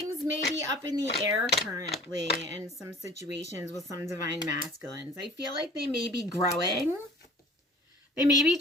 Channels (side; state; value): both; normal; correlation 0.47